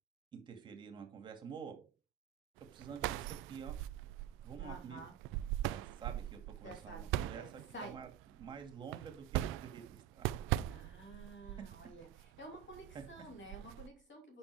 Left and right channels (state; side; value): quieter; left; 11.2 dB